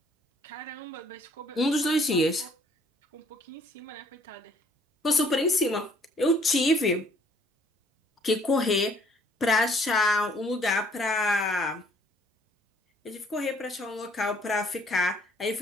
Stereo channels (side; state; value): both; normal; correlation 0.61